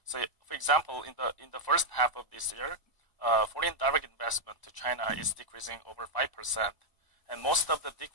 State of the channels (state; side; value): late; right; 1.0 ms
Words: So, for example, in the first half of this year, foreign direct investment to China is decreasing over 5%, and most of the